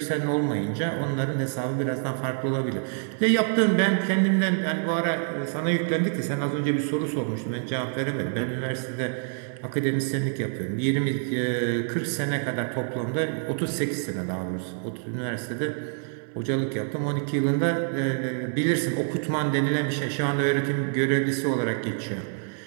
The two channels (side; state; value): left; silent; 60 dB below the other